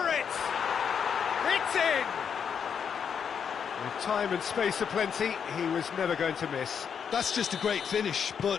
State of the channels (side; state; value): right; quieter; 7.2 dB